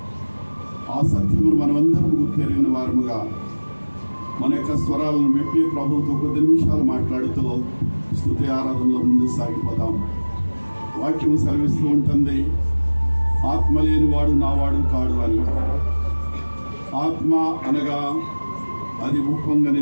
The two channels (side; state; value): both; inverted; correlation -1.00